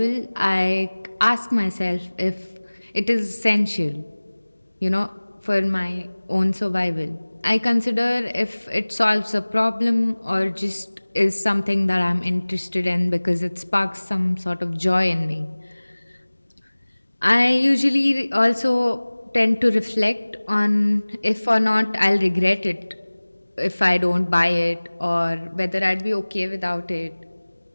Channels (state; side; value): inverted; both; correlation -1.00